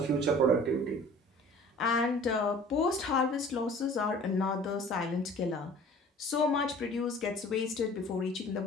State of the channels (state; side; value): normal; both; correlation 0.47